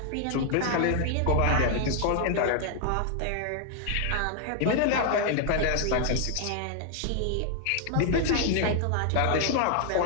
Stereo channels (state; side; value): different; both; correlation 0.00